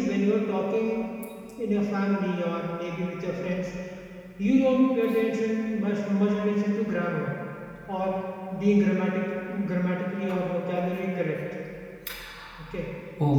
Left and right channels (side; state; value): both; identical; correlation 1.00